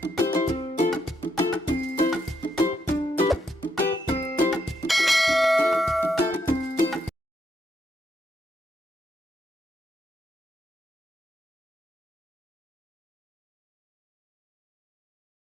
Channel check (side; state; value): both; normal; correlation 0.77